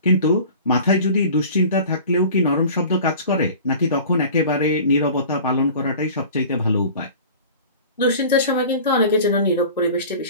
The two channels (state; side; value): inverted; both; correlation -0.42